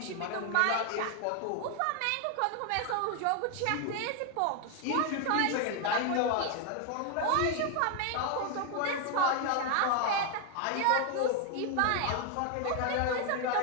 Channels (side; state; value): both; different; correlation 0.01